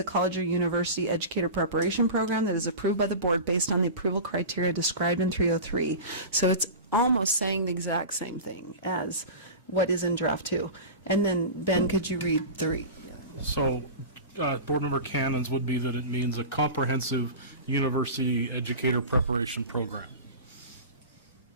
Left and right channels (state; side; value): inverted; both; correlation -0.30